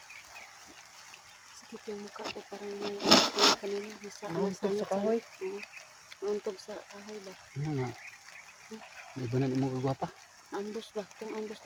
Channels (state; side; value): identical; both; correlation 1.00